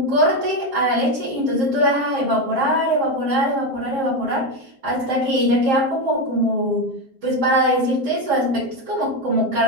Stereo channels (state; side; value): late; left; 7.5 ms